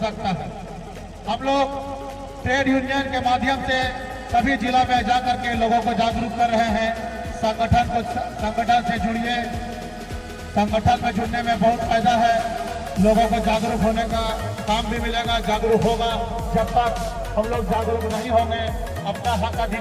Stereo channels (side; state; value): both; identical; correlation 1.00